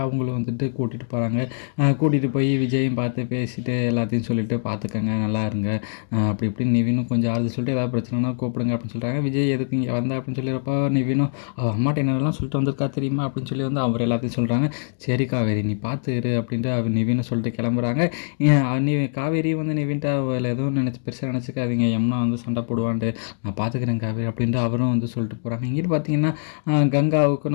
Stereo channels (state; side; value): silent; right; digital silence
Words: அவங்களும் வந்துட்டு கூட்டிகிட்டு போகிறாங்க. கூட்டிகிட்டு போய் விஜயும் பார்த்து பேசிட்டு எல்லாத்தையும் சொல்லிவிட்டு பார்த்துக்கங்க, நல்லா இருங்க அப்படி இப்படின்னு நிவினும் கொஞ்சம் ஆறுதல் சொல்லிட்டு ஏதாவது பிரச்சனைனா கூப்பிடுங்க அப்படின்னு சொல்கிறாங்க. விஜய் எதுக்கு இங்கே வந்தா அப்படின்னு சொல்லியிருப்போ நிவினும் அம்மாட்ட என்னெல்லாம் சொல்லிட்டு வந்திருக்கா தெரியுமா அப்படின்னு சொல்லி வந்து அவர் எல்லாத்தையும் சொல்கிறாங்க. சரி காவேரி நீ பார்த்து இரு அப்படின்ட்டு அவர் நிவினை சொல்லிட்டு கிளம்புறாங்க. நீ காவேரி வந்து நிவின்ட்ட எதுவும் பெருசாக நினச்சிக்காதீங்க, யமுனா வந்து சண்டை போடுவான்ட்டு, நான் பார்த்துக்கிறேன் காவேரி அப்படின்ட்டு அவரும் வந்து சொல்லிட்டு போகிறாங்க. இங்கிட்டு பார்த்தீங்கன்னா கங்காவுக்கும்